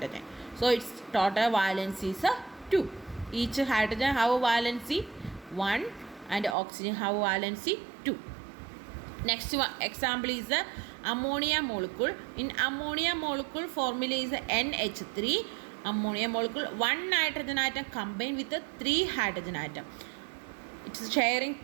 So its total valency is 2. Each hydrogen have a valency 1 and oxygen have a valency 2. Next one example is ammonia molecule. In ammonia molecule formula is NH3. Ammonia molecule, one nitrogen atom combined with 3 hydrogen atom. It is sharing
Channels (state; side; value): drops out; left; at 6.6 s